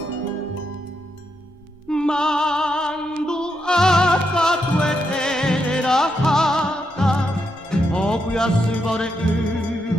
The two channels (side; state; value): both; normal; correlation 0.81